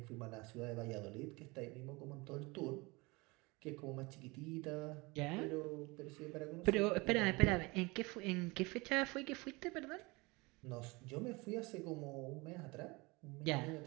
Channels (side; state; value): left; quieter; 25.0 dB